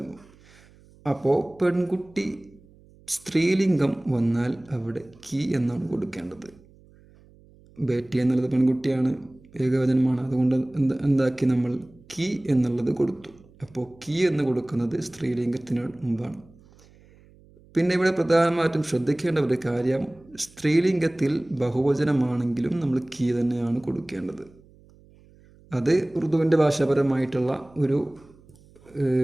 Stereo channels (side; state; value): right; noise; hum, 27 dB below the sound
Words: അപ്പോൾ പെൺകുട്ടി സ്ത്രീലിംഗം വന്നാൽ അവിടെ കി എന്നാണ് കൊടുക്കേണ്ടത്. ബേട്ടി എന്നുള്ളത് പെൺകുട്ടിയാണ്, ഏകവചനമാണ്. അതുകൊണ്ട് എന്താക്കി നമ്മൾ കി എന്നുള്ളത് കൊടുത്തു. അപ്പോൾ കി എന്ന് കൊടുക്കുന്നത് സ്ത്രീലിംഗത്തിന് മുമ്പാണ്. പിന്നെ ഇവിടെ പ്രധാനമായിട്ടും ശ്രദ്ധിക്കേണ്ട ഒരു കാര്യം, സ്ത്രീലിംഗത്തിൽ ബഹുവചനമാണെങ്കിലും നമ്മൾ കി തന്നെയാണ് കൊടുക്കേണ്ടത്. അത് ഉറുദുവിൻ്റെ ഭാഷാപരമായിട്ടുള്ള